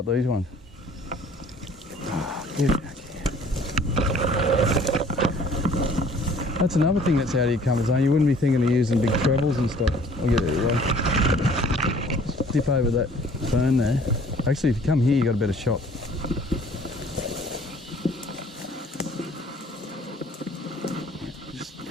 these ones. Oh, get it back here. That's another thing that's out of your comfort zone. You wouldn't be thinking of using big trebles and stuff. I'll get it away. Dip over that fern there. Actually, if you come here, you got a better shot. Just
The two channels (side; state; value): both; normal; correlation 0.54